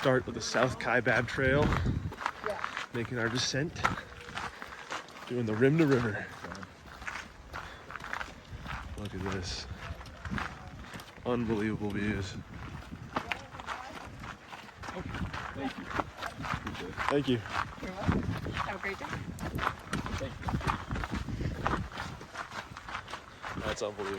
of the South Kaibab Trail, making our descent, doing the rim to river. Look at this. Unbelievable views. Thank you. Thank you. You're welcome. Have a great day. Thank you. That's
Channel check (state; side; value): identical; both; correlation 1.00